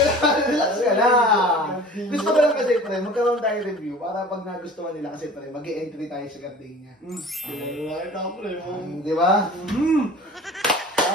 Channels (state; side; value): normal; both; correlation 0.43